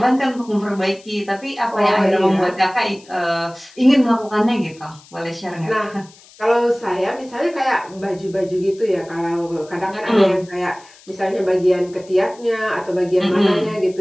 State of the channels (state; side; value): noise; left; hiss, 25 dB below the sound